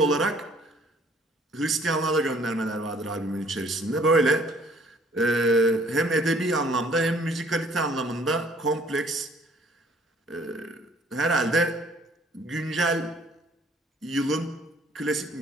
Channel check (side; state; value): both; normal; correlation 0.58